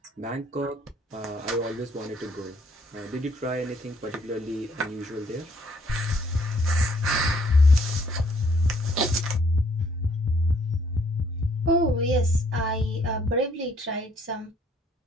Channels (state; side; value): normal; both; correlation 0.65